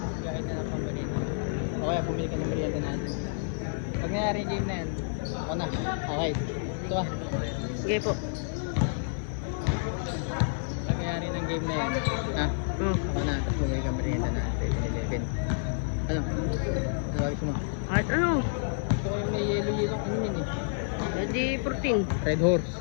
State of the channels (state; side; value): silent; right; digital silence